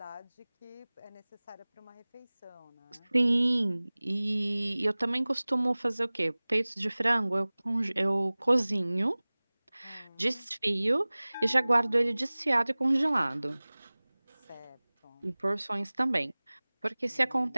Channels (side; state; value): both; inverted; correlation -1.00